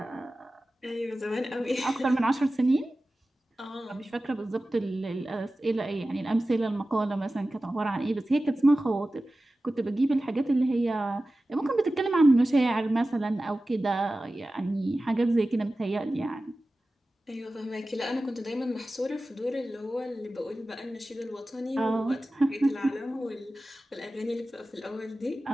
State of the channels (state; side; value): normal; both; correlation 0.95